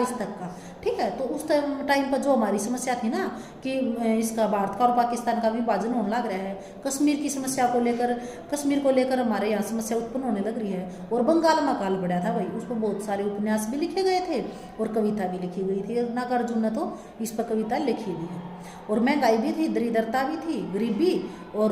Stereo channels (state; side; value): identical; both; correlation 1.00